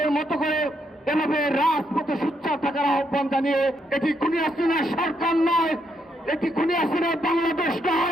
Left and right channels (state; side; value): normal; both; correlation 0.77